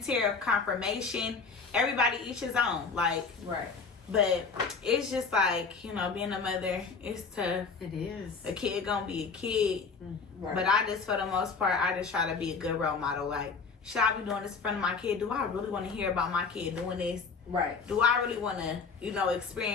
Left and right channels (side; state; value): right; quieter; 5.0 dB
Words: tear of confirmation. Everybody each his own. Like. Right. But it's just like, you know, being a mother, it's tough. It is. A kid gonna be a kid. Right. But I just, for the most part, I just try to be a good role model. Like, should I be doing this in front of my kid? Do I really want to hear about my kid doing this? Right. Do I really want to, you know,